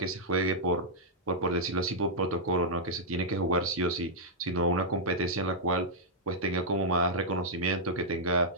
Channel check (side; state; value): both; normal; correlation -0.07